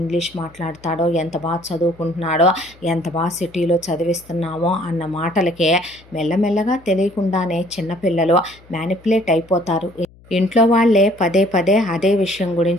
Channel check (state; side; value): noise; left; hum, 26 dB below the sound